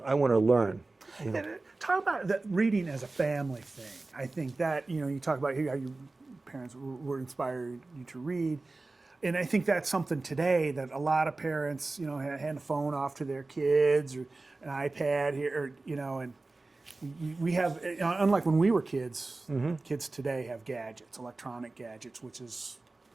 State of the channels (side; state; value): left; quieter; 3.3 dB